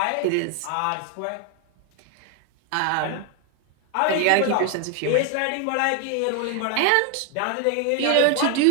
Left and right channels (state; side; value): different; both; correlation 0.01